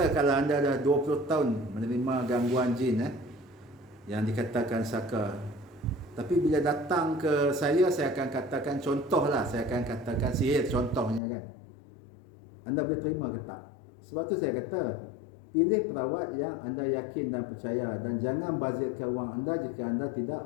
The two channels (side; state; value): right; drops out; at 11.2 s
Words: kalau anda dah 20 tahun menerima gangguan jin yang dikatakan saka, tapi bila datang ke saya akan katakan contohlah, saya akan katakan sihir contohnya kan, anda boleh terima ke tak? Sebab tu saya kata pilih perawat yang anda yakin dan percaya, dan jangan bazirkan wang anda jika anda